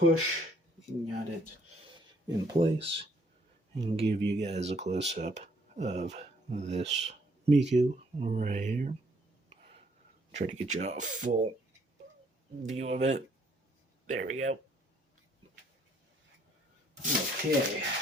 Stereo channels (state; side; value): normal; both; correlation 0.65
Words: Got it in place. And give you guys a close-up of this Miku right here. Try to get you a full view of it. There we go. Okay.